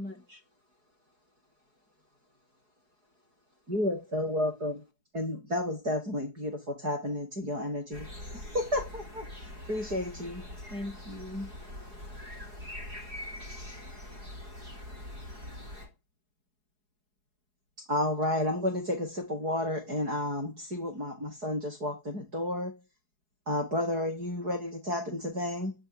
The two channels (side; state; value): left; late; 4.7 ms